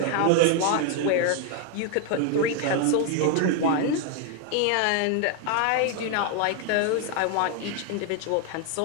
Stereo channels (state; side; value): different; both; correlation 0.00